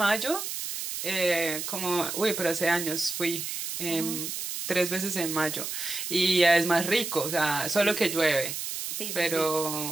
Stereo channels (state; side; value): noise; right; hiss, 5 dB below the sound